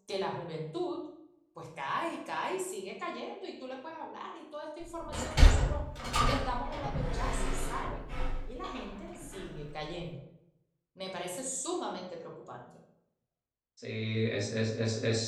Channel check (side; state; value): both; identical; correlation 1.00